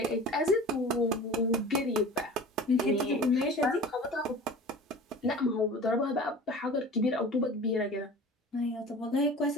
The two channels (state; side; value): normal; both; correlation 0.39